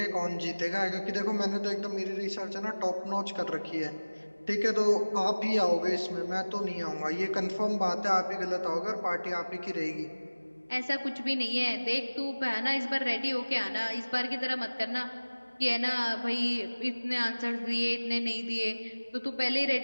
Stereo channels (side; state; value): both; inverted; correlation -1.00